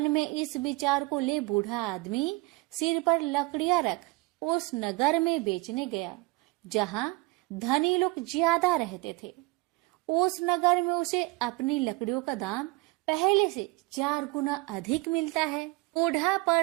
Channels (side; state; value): left; quieter; 23.0 dB